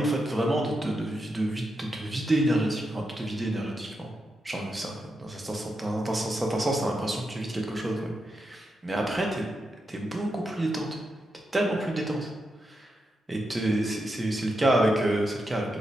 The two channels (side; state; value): both; normal; correlation 0.86